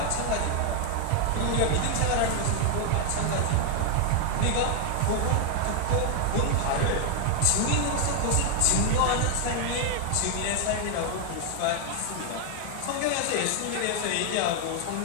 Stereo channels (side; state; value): both; different; correlation 0.00